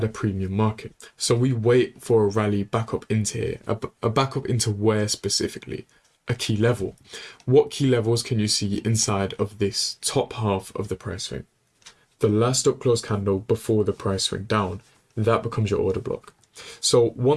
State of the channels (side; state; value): both; identical; correlation 1.00